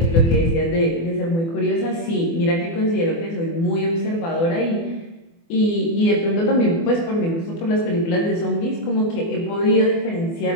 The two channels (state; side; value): late; right; 24 ms